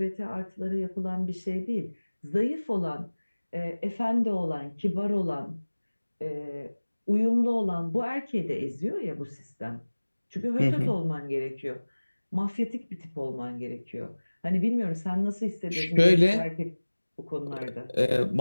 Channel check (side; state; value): both; inverted; correlation -1.00